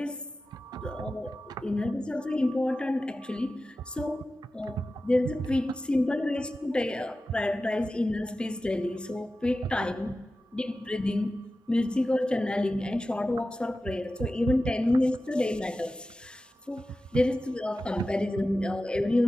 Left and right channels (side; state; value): both; normal; correlation 0.94